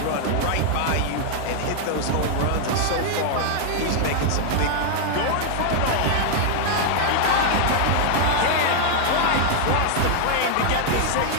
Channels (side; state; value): both; different; correlation 0.00